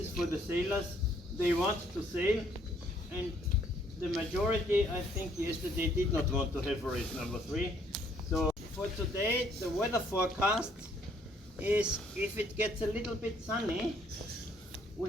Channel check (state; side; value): normal; both; correlation 0.65